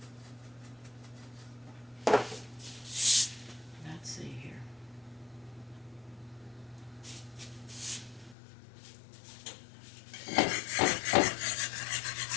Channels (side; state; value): right; drops out; at 8.3 s